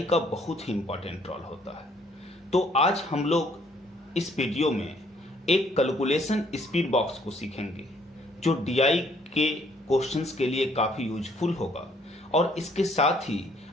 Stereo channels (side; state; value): both; normal; correlation 0.65